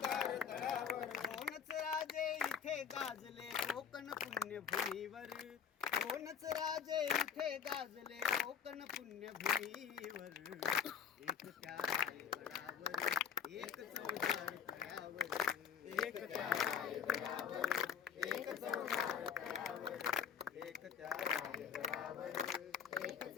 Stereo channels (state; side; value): quieter; right; 7.4 dB